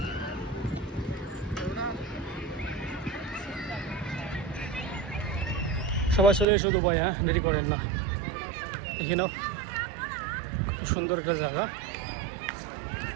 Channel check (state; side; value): drops out; left; at 6.5 s